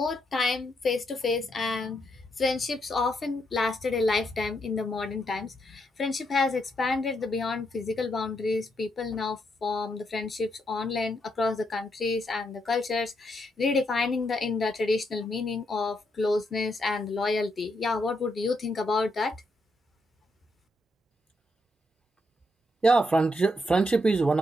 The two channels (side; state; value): both; normal; correlation 0.79